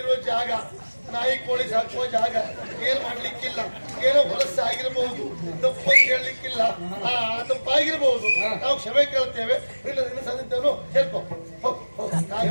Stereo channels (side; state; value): both; inverted; correlation -1.00